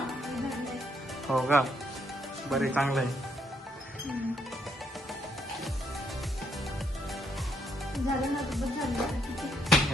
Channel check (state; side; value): normal; both; correlation 0.74